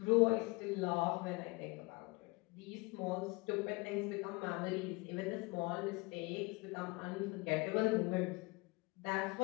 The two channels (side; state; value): right; quieter; 26.2 dB